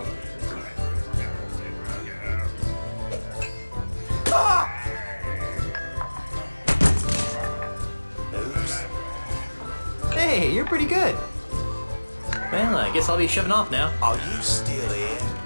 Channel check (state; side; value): inverted; both; correlation -1.00